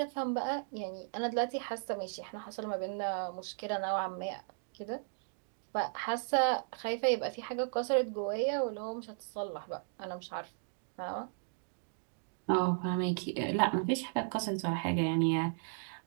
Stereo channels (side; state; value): left; silent; digital silence